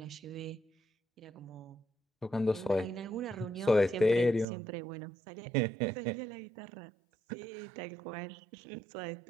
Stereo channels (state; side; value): drops out; left; at 4.5 s